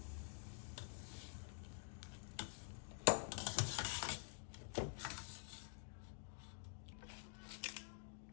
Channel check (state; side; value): silent; right; digital silence